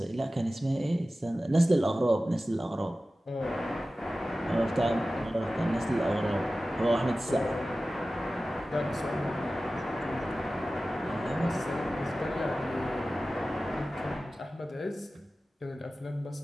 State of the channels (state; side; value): normal; both; correlation 0.95